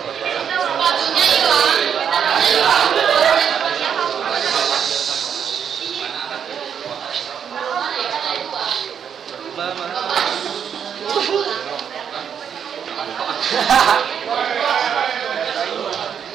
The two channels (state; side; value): quieter; left; 7.9 dB